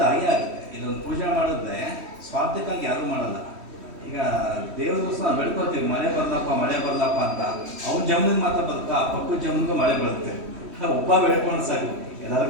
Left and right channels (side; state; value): left; late; 3.1 ms